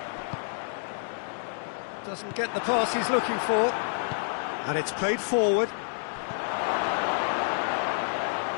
Doesn't get the pass he's looking for. And it's played forward.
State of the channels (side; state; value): right; silent; digital silence